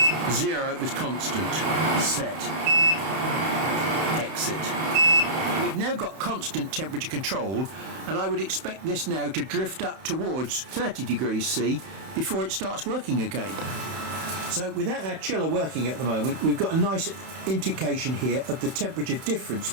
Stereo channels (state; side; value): late; left; 31 ms